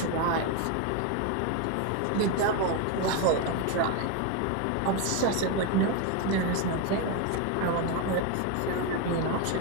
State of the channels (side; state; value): both; different; correlation 0.02